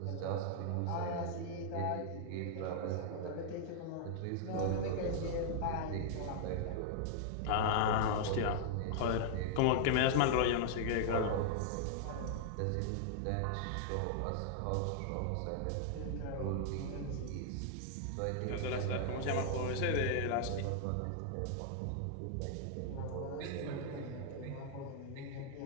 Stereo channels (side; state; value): both; different; correlation -0.01